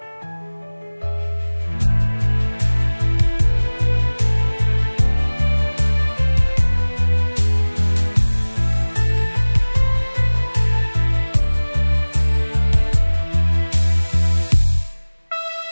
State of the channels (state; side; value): inverted; both; correlation -1.00